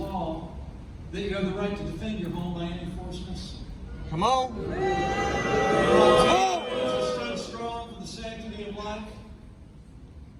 that you have the right to defend your home by any force necessary. Come on. Stood strong for the sanctity of life.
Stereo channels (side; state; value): both; identical; correlation 1.00